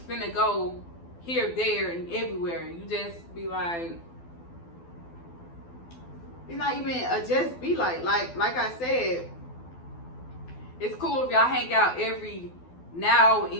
go here, there, and everywhere. You just be like, it's not even a just be like I said, it's cool if y'all hang out every now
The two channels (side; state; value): right; late; 12 ms